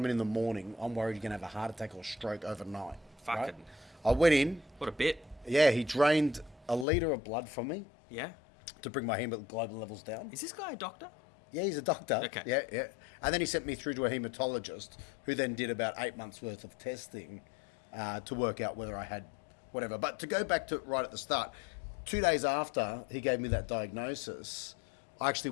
in the morning, I'm worried you're going to have a heart attack or stroke overnight. Fucking. Right? I went in. What a bit. Yeah, he drained a litre of blood from me Yeah. to bring my hemoglobin levels down. Is this guy a doctor? Yeah, he's a doctor. Okay. Yeah. And then he sent me through to a hematologist who then did about 8 months' worth of testing to work out whether I had whatever. But to go back to right at the start, 2 days after he gave me that diagnosis, I actually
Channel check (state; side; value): drops out; right; at 6.9 s